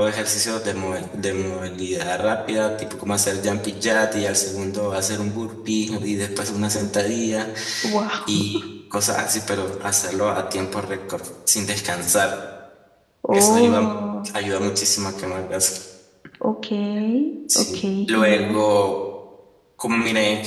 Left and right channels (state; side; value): identical; both; correlation 1.00